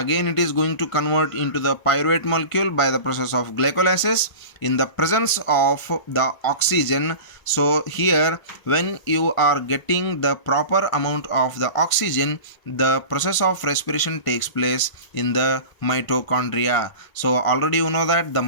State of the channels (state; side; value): late; right; 1.6 ms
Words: it is going to convert into the pyruvate molecule by the process of glycolysis in the presence of the oxygen. So here when you are getting the proper amount of the oxygen, the process of respiration takes place in the mitochondria. So already you know that the